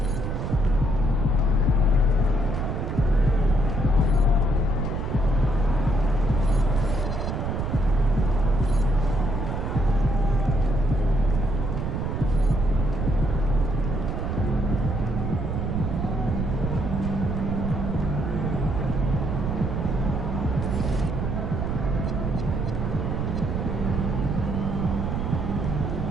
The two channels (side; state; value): right; noise; rumble, 1 dB below the sound